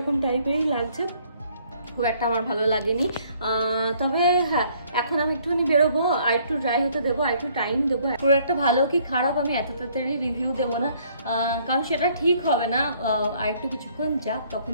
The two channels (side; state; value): both; inverted; correlation -0.63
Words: টাইপেরই লাগছে। খুব একটা আমার ভালো লাগেনি। তবে হ্যাঁ, এখন আমি একটুখানি বেরোবো, আর একটু ড্রাই হতে দেবো, আর একটু টাইম দেবো। পুরো একটা ভালো কি খারাপ আমি এত তাড়াতাড়ি রিভিউ দেবো না, কারণ সেটা ঠিক হবে না। আর একটু কিছুক্ষণ যাক,